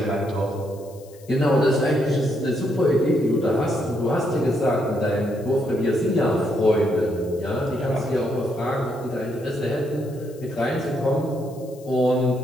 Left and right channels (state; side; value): noise; left; hiss, 25 dB below the sound